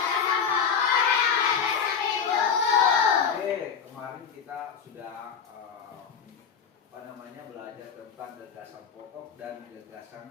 Oke, kemarin kita sudah belajar tentang gagasan pokok dan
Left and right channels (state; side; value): quieter; right; 6.9 dB